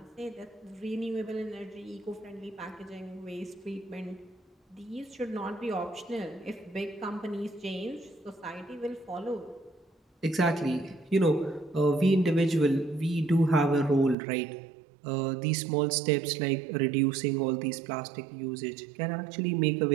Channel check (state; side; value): drops out; left; at 14.2 s